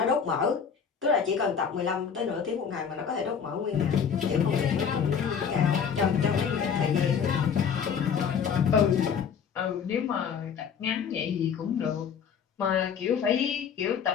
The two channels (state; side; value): quieter; right; 7.0 dB